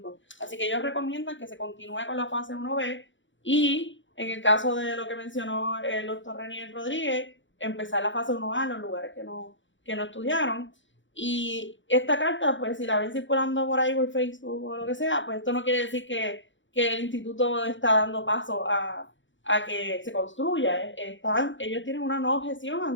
Así que ellos recomiendan que se continúe con la fase 1B y, en el caso de lo que mencionó el doctor Renier Rodríguez, empezar la fase 1A en los lugares que no estudiaron. Y esta carta, pues si la ven circulando por ahí por Facebook o lo que sea, pues esto no quiere decir que el instituto está dando paso a a que se construya. Ellos tienen una no objeción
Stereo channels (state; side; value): late; right; 0.55 ms